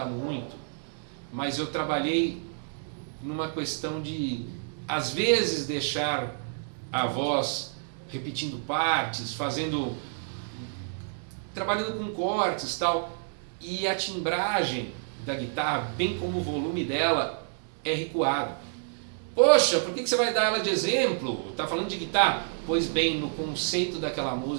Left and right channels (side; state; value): left; silent; 59 dB below the other